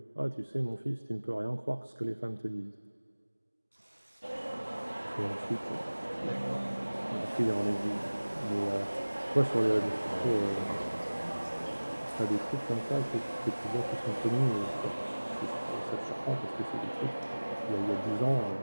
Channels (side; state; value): both; inverted; correlation -1.00